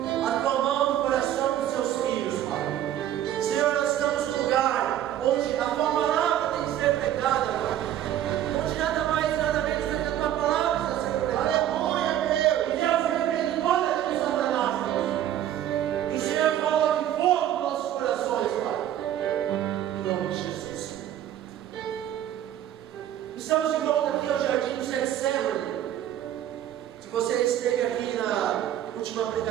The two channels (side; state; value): left; quieter; 11.6 dB